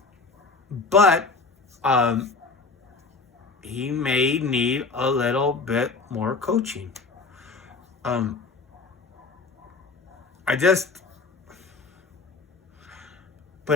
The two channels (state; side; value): quieter; right; 4.1 dB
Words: But he may need a little bit more coaching. But